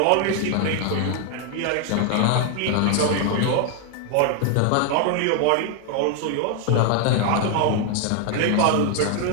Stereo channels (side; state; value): both; different; correlation 0.01